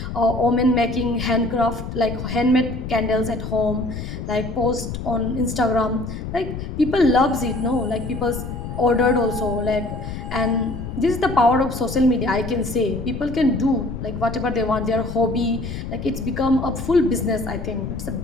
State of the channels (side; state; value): left; noise; rumble, 7 dB below the sound